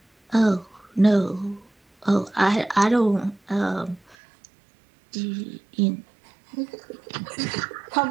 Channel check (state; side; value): drops out; left; at 4.2 s